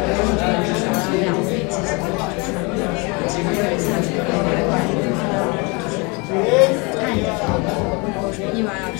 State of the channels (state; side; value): quieter; right; 29.4 dB